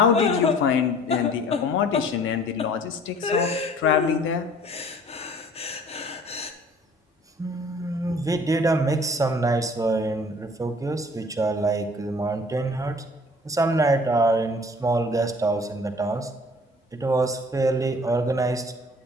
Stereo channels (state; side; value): normal; both; correlation 0.51